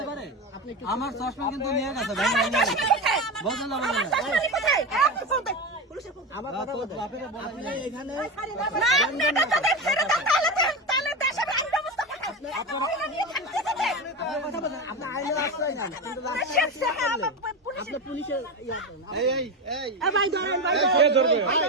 পারে, আমার চশমা কিন্তু নিয়ে গেছে ভাই, বুঝলেন না? বুঝলেন না? আমার কথা বলতে আপনি এখানে কথা বলেন, আপনি আইনের আশ্রয় নেন, কিন্তু আপনি পুলিশের কে ধরবে?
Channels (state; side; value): normal; both; correlation 0.19